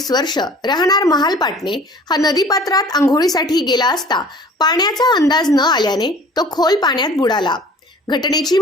वर्ष राहणार महालपाटणे हा नदीपात्रात अंघोळीसाठी गेला असता पाण्याचा अंदाज न आल्याने तो खोल पाण्यात बुडाला। घटनेची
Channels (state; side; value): normal; both; correlation 0.48